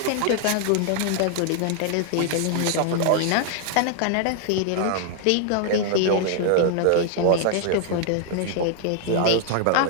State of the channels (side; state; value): both; different; correlation 0.00